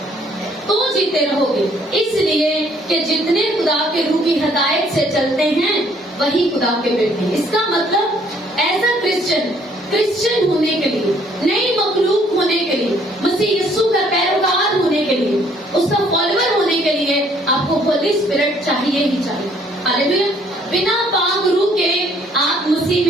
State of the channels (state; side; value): normal; both; correlation 0.63